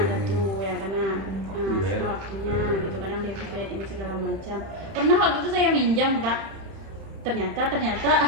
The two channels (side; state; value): left; late; 31 ms